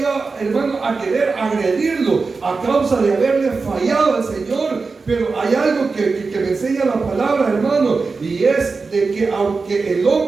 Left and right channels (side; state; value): left; quieter; 4.3 dB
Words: hermano, a querer agredirlo a causa de haberle fallado al Señor. Pero hay algo que me enseña la palabra, hermano, y es de que aunque el